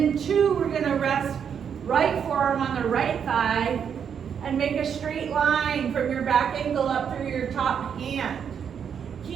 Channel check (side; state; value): left; quieter; 7.6 dB